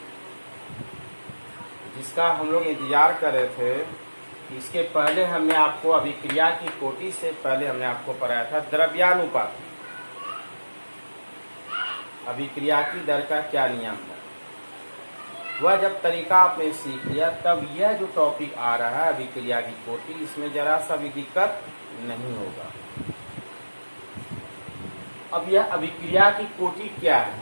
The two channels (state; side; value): inverted; both; correlation -1.00